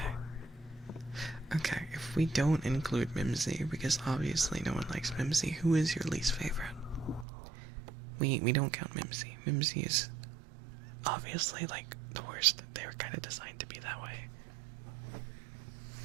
Okay, if we don't include Mimsy, because obviously no one likes Mimsy, who is your least favorite? We don't count Mimsy. Mimsy is obviously, like, the worst. They were kind of designed to be that way.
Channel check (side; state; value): left; drops out; at 7.2 s